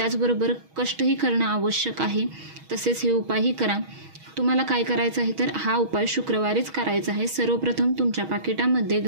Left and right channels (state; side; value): late; left; 6.3 ms